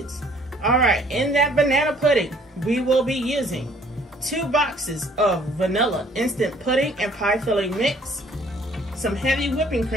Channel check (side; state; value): both; normal; correlation 0.59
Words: All right, in that banana pudding, we will be using 2 boxes of vanilla instant pudding and pie filling mix, some heavy whipping